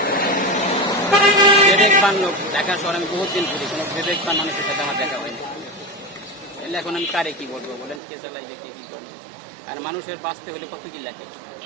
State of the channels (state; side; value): drops out; left; at 8.0 s